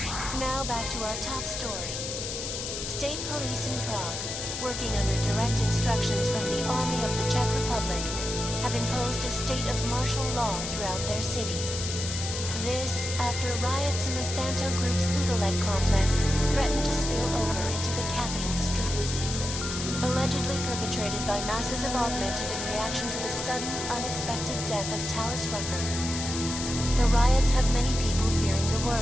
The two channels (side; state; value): left; noise; hiss, 5 dB below the sound